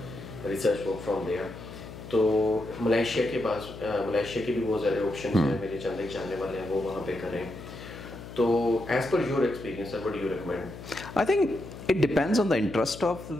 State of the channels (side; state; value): left; noise; hum, 13 dB below the sound